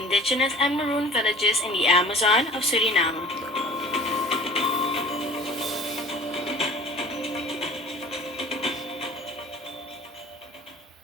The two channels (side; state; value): both; normal; correlation 0.44